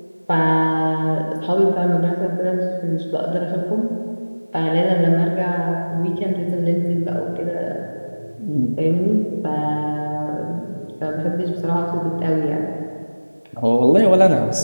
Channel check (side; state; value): both; inverted; correlation -1.00